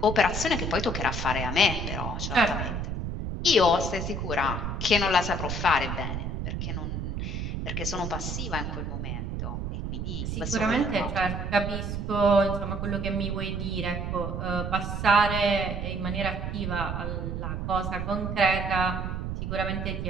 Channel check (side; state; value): right; noise; rumble, 3 dB below the sound